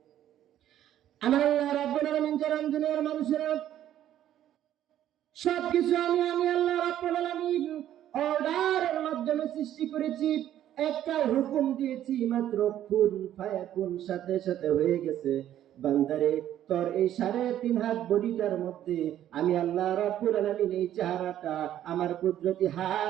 আমার আল্লাহ রাব্বুল আলামিন জানান, দুনিয়ার মানুষেরা সবকিছু আমি আল্লাহ রাব্বুল আলামিন অর্ডারের মাধ্যমে সৃষ্টি করেছি। একটা হুকুম দিয়েছি মাত্র, কুন ফায়াকুন, সাথে সাথে হয়ে গেছে। বান্দারে, তোর এই 3.5 হাত বডিটার মধ্যে আমি আল্লাহ রাব্বুল আলামিন এই চেহারাটা আমার কুদরতি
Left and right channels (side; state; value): left; quieter; 11.7 dB